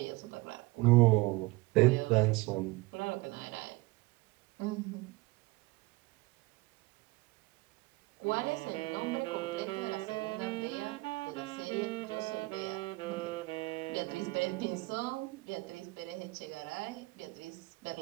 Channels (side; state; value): left; quieter; 22.4 dB